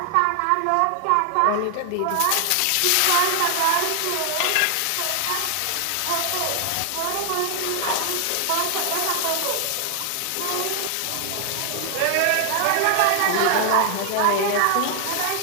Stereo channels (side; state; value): both; different; correlation 0.00